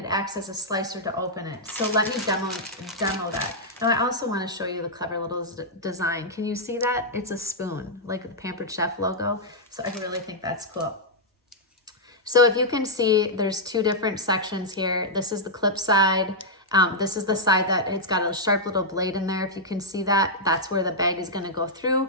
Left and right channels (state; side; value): normal; both; correlation -0.07